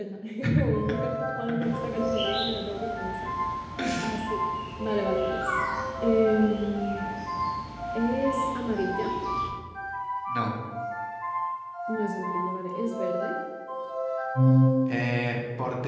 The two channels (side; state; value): both; identical; correlation 1.00